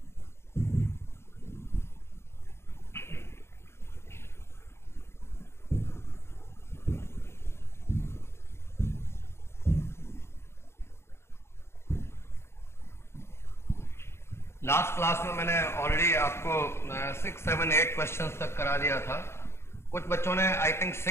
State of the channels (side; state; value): right; late; 0.12 ms